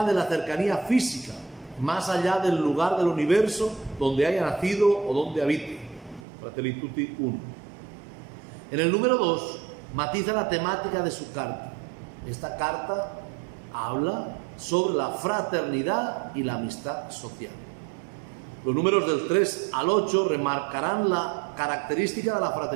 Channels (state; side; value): drops out; left; at 6.2 s